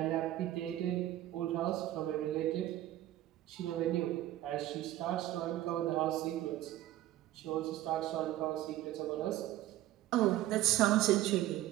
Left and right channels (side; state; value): left; quieter; 14.5 dB